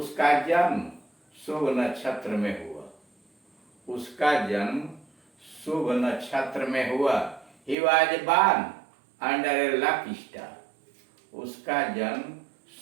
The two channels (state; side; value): drops out; left; at 7.8 s